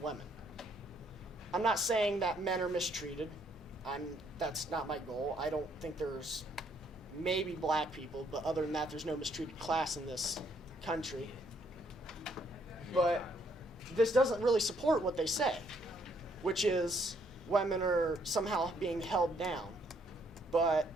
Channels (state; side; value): normal; both; correlation 0.69